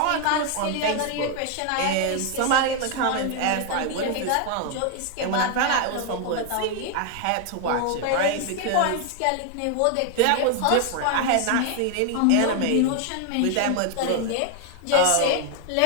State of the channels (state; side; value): different; both; correlation 0.01